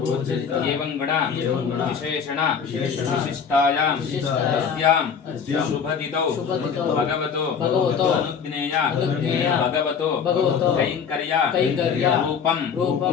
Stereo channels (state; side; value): quieter; right; 6.7 dB